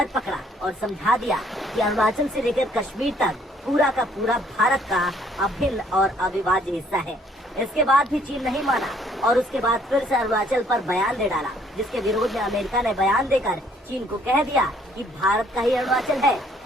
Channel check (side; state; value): both; normal; correlation 0.63